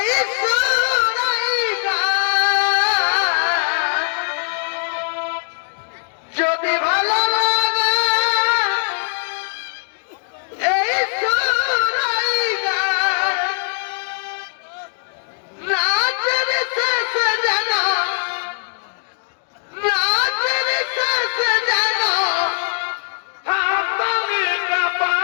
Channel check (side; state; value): right; silent; digital silence